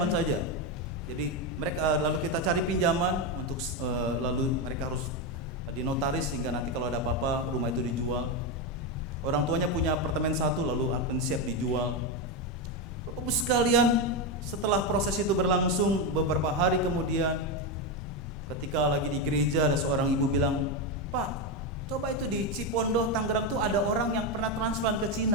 saja. Jadi mereka, lalu kita cari pinjaman untuk lalu mereka harus dinotaris sehingga nanti kalau ada apa-apa rumah itu dijual. Orang tuanya punya apartemen satu lalu akan siap dijual. Bapak Ibu sekalian, setelah proses itu berlangsung beberapa hari kemudian, ketika lagi di gereja ada seorang ibu bilang, "Pak, coba itu di Cipondoh, Tangerang tuh ada orang yang pernah transplant ke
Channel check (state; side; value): normal; both; correlation 0.09